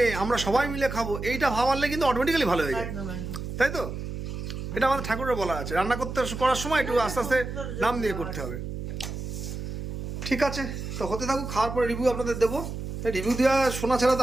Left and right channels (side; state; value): right; noise; hum, 6 dB below the sound